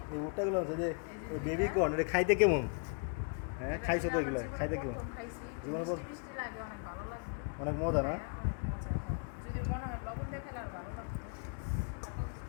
এই ভুট্টাগুলো আছে যে বেবি কর্ন, এটা খাইতে কেমন? হ্যাঁ, খাইছো তো এগুলো? খাইতে কেমন? জীবনে অনেক মজা না?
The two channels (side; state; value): right; quieter; 38.5 dB